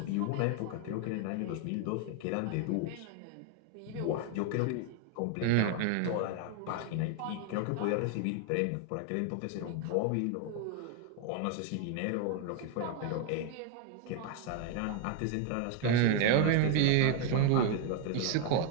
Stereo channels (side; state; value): both; different; correlation 0.01